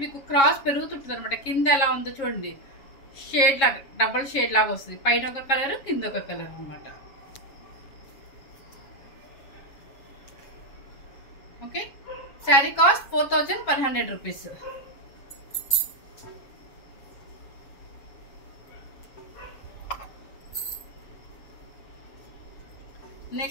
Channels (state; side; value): late; right; 7.3 ms